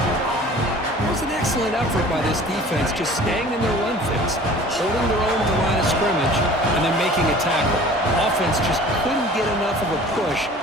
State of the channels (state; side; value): normal; both; correlation 0.46